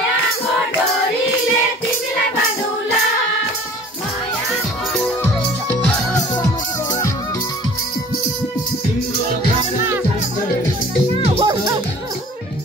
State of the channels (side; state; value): both; normal; correlation 0.47